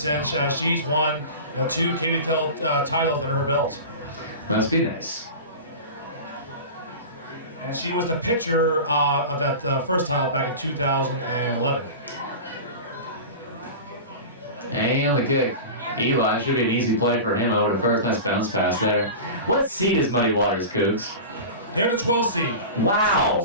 She's won 2 KVKL titles under her belt. Must be nice. And she was the pitcher of that first title back in 2011. And the kick. Eli should be an easy play for him over to first. Nice bounce pass there. What seed is Muddy Waters, Cougs? They're the 12th seed.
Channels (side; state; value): both; inverted; correlation -0.31